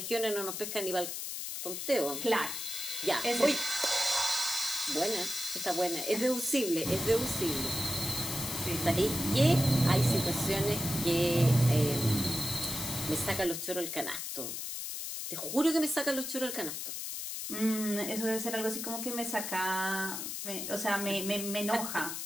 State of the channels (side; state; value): left; noise; hiss, 5 dB below the sound